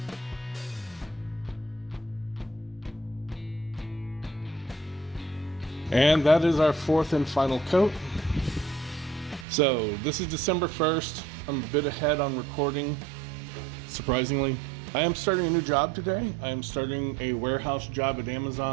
And that is our 4th and final coat. So this is December 1st. I'm a bit ahead on recording, surprisingly. I am starting a new job today. I am starting a warehouse job at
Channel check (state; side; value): drops out; left; at 9.5 s